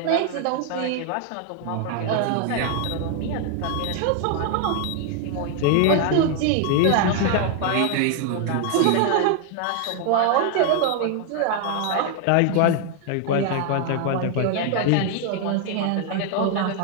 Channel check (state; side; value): different; both; correlation 0.01